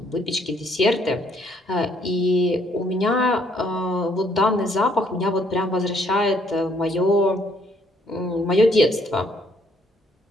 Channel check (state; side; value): normal; both; correlation 0.67